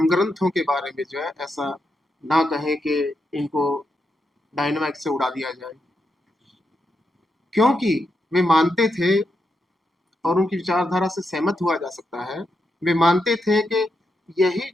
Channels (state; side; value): normal; both; correlation 0.84